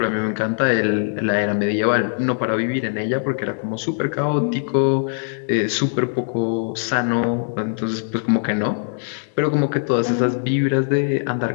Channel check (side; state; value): right; silent; digital silence